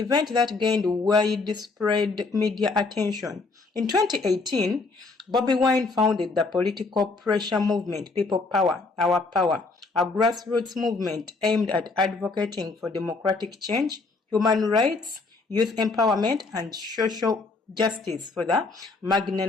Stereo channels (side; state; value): right; quieter; 3.8 dB